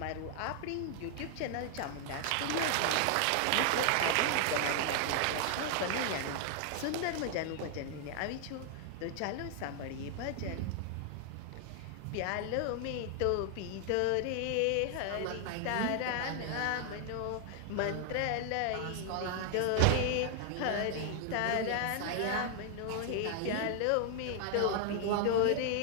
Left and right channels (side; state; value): both; different; correlation 0.00